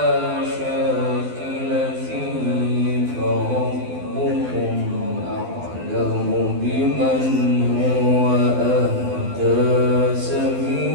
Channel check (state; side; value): late; left; 12 ms